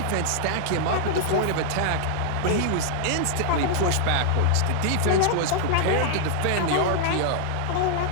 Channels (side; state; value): both; different; correlation -0.01